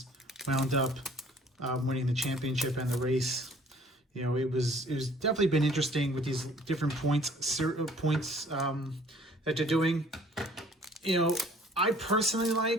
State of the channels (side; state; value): both; normal; correlation 0.55